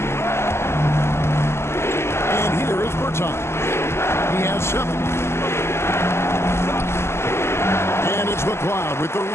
And here is Bertans. He has 7. And it's McLeod with the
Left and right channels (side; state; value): right; late; 0.12 ms